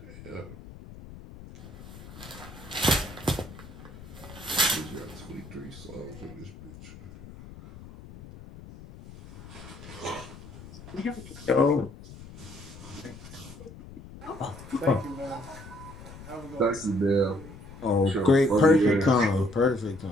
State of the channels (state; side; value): noise; left; rumble, 16 dB below the sound